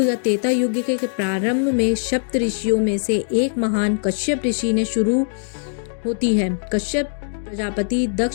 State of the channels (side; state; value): right; silent; digital silence